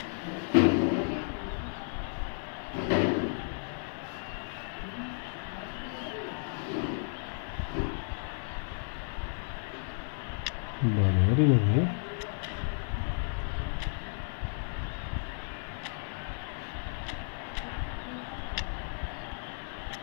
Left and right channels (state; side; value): silent; right; 56 dB below the other